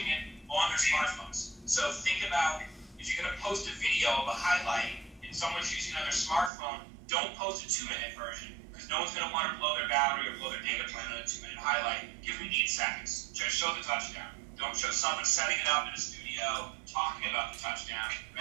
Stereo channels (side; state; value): left; drops out; at 6.5 s